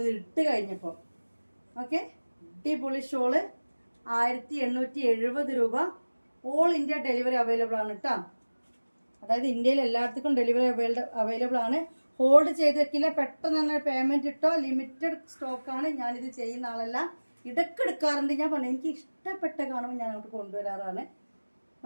ഇട്ട് കഴിഞ്ഞപ്പോൾ. ഓക്കെ, അടിപൊളി ഷോള് 1870 രൂപ. ഓൾ ഇന്ത്യ ഡെലിവറി അവൈലബിൾ ആണ് കേട്ടോ. അതായത് ഇന്ത്യയിൽ എല്ലായിടത്തും ഡെലിവറി അവൈലബിൾ ആണ്. ഹോൾഡ് ചെയ്ത് വെക്കില്ല, പെട്ടെന്ന് തന്നെ പേയ്മെന്റ് ഇട്ടോ. ലിമിറ്റഡ് സ്റ്റോക്കാണ്. ഞാനിത് ചെയ്യുന്ന ആളല്ല, ഇടയ്ക്ക് എടുക്കാറുണ്ട്. ഞാൻ പറഞ്ഞു എനിക്ക് ഇഷ്ടപ്പെട്ട കാണുമ്പോൾ ഞാൻ അങ്ങോട്ട് കൊണ്ടുവരാറാണ്.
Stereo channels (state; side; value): inverted; both; correlation -1.00